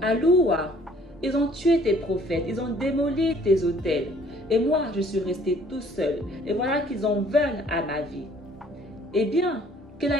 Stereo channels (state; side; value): normal; both; correlation 0.57